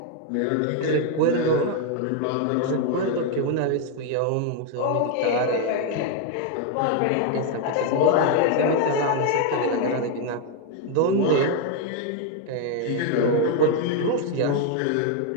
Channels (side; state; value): both; different; correlation 0.01